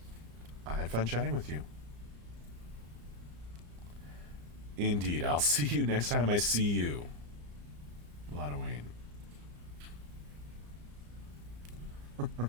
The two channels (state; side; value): late; left; 34 ms